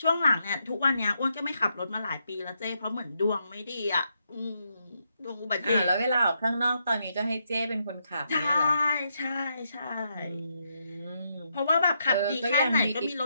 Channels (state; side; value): inverted; both; correlation -0.80